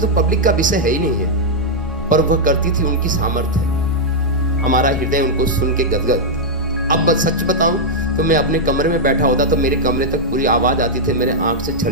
पब्लिक का विषय है ही नहीं है, पर वह करती थी, उनकी सामर्थ्य है। हमारा हृदय उनको सुन के गदगद। अब सच बताऊं तो मैं अपने कमरे में बैठा होता तो मेरे कमरे तक पूरी आवाज आती थी, मेरे आंख से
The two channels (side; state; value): both; normal; correlation -0.04